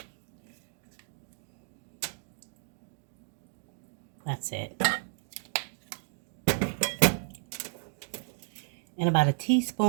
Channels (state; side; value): silent; left; digital silence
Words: That's it. And about a